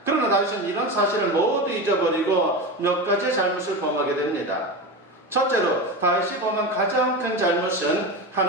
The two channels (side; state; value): both; normal; correlation 0.22